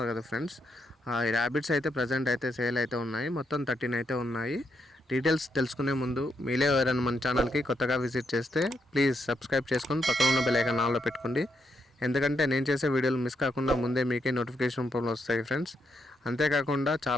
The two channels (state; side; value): normal; both; correlation 0.80